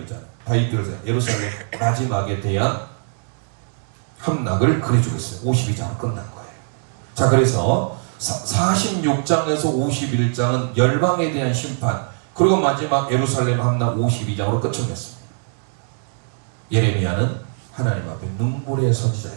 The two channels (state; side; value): silent; left; digital silence